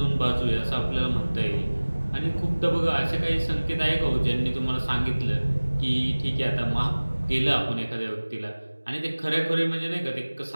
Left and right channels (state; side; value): inverted; both; correlation -1.00